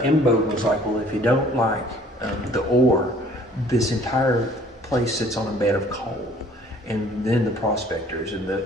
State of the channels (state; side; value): normal; both; correlation 0.55